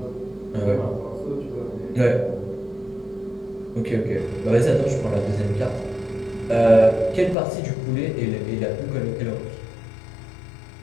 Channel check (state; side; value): drops out; right; at 7.4 s